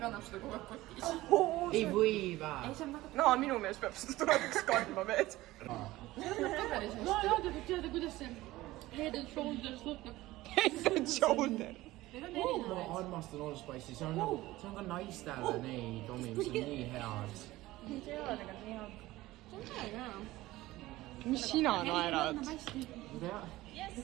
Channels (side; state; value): left; quieter; 17.6 dB